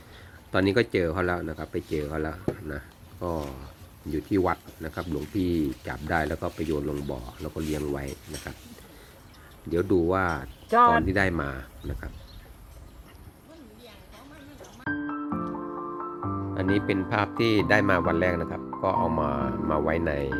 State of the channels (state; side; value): identical; both; correlation 1.00